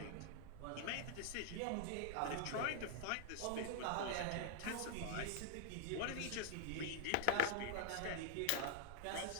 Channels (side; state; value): both; different; correlation 0.00